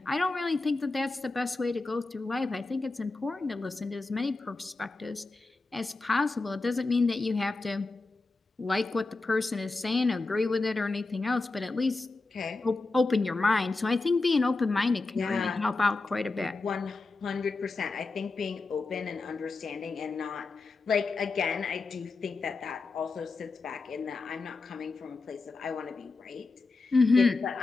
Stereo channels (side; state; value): right; quieter; 3.6 dB